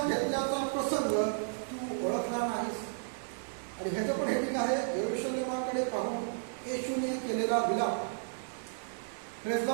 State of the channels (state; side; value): silent; left; digital silence